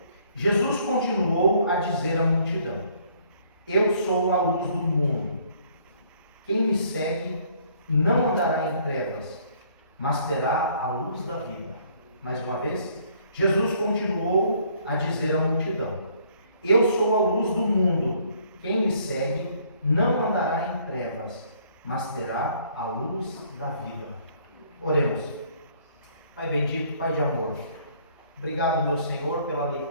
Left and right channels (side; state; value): both; inverted; correlation -0.62